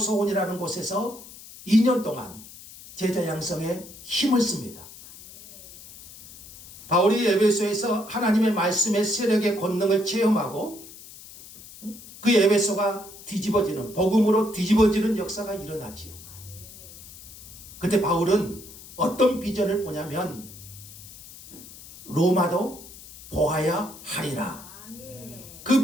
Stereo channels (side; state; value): left; noise; hiss, 17 dB below the sound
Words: 곳에서 2년 동안 제자 양성에 힘을 씁니다. 바울이 에베소에서 하나님의 말씀의 세력의 권능을 체험하고 그 에베소가 뒤집어지는, 복음으로 뒤집어지는 역사가 일어나지요. 그때 바울은 어떤 비전을 보냐면 로마도 보아야 하리라.